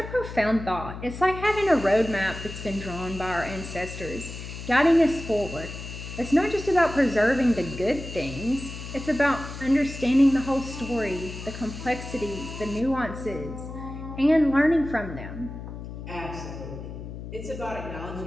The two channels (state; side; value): noise; left; hum, 10 dB below the sound